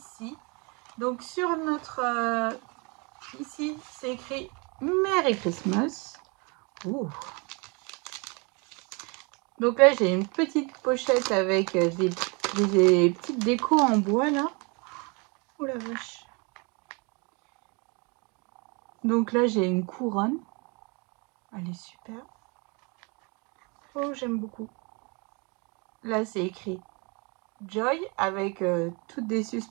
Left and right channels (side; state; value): left; quieter; 30.9 dB